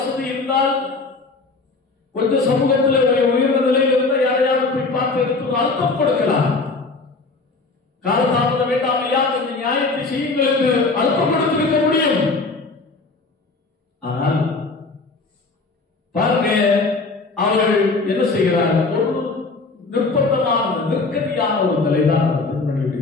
இருந்தால், கொஞ்சம் சமூகத்தில் உயர்ந்த நிலையில் இருந்தால் யாரையாவது போய் பார்த்து எடுத்து அழுத்தம் கொடுக்கலாம். காலதாமதம் வேண்டாம் ஐயா, கொஞ்சம் நியாயத்தை செய்யுங்கள் என்று அழுத்தம் கொடுத்திருக்க முடியும். ஆனால் பாருங்க, அவர்கள் என்ன செய்கிறார்? ஒரு நிர்பந்தமான, நெருக்கடியான ஒரு நிலைதான் அந்த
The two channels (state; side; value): quieter; right; 3.8 dB